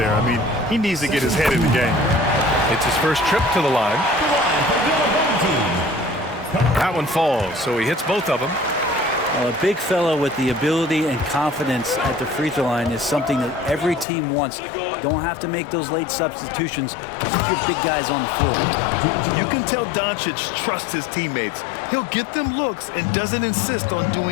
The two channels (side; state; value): right; drops out; at 14.1 s